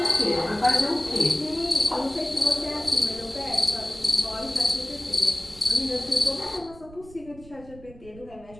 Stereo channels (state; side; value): noise; right; rumble, 21 dB below the sound